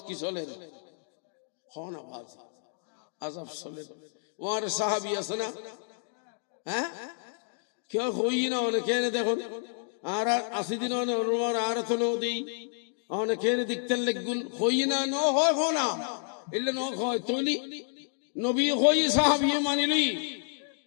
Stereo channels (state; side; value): silent; right; digital silence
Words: কি চলে হন আওয়াজ আযাব চলে। ওর সাহাবী আছে না, হ্যাঁ, কেউ হই না অনেকে দেখুন, আর 80 দিন আর তো নদী অনেকে দেখতে লেগুন হই না ন হয় হো না, এলে ন হয় তৈলি নবী হই সাহাবী মানিলি